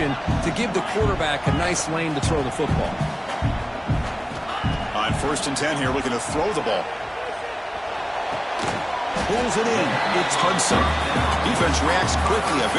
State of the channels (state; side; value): identical; both; correlation 1.00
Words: to give the quarterback a nice lane to throw the football. On 1st and 10 here, looking to throw the ball. Pulls it in. It's Hudson. Defense reacts quickly. A